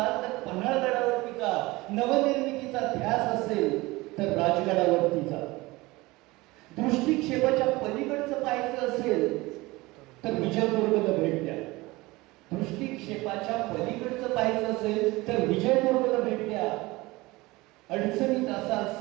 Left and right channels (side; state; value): left; quieter; 21.3 dB